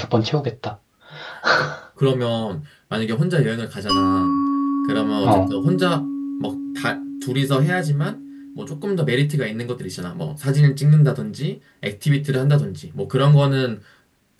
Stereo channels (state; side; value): identical; both; correlation 1.00